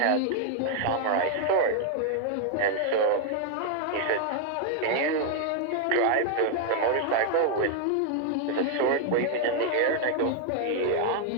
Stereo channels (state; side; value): different; both; correlation 0.00